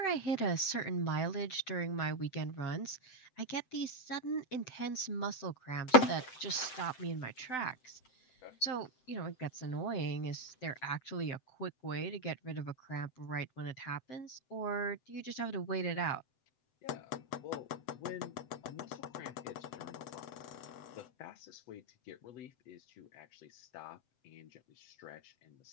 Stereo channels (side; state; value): right; late; 7.8 ms